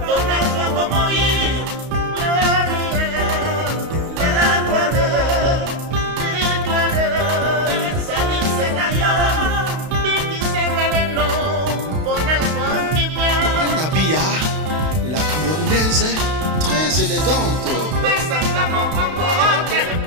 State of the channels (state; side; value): late; left; 32 ms